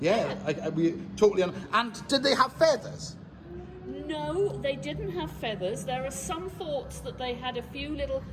we totally. And did they have feathers? No, they didn't have feathers. There are some thoughts that they had a few little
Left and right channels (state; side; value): identical; both; correlation 1.00